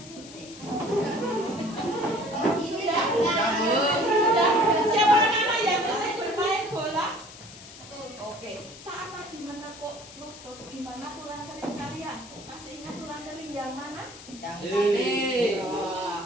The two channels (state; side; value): noise; left; hiss, 17 dB below the sound